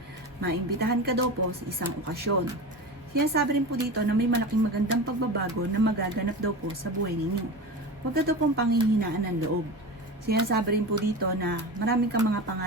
Maimbitahan ka daw po sa isang okasyon. Sinasabi rin po dito na may malaking magandang pagbabago na magaganap daw po sa buhay ninyo. Huwag ka daw pong panghihinaan ng loob. Sinasabi rin po dito na maraming kang mga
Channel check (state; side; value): normal; both; correlation 0.28